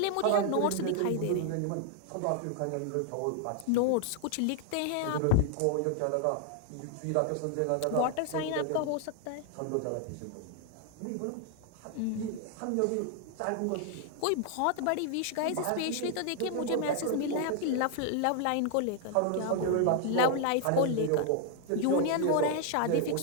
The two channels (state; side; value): different; both; correlation 0.00